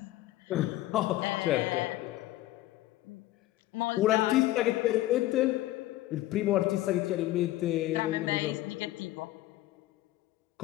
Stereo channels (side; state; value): right; quieter; 15.9 dB